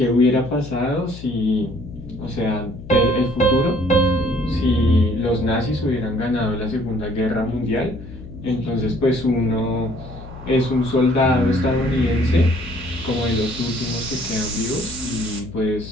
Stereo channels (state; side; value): noise; left; hum, 14 dB below the sound